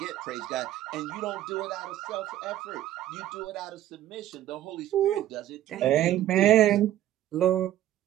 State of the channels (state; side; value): quieter; left; 13.0 dB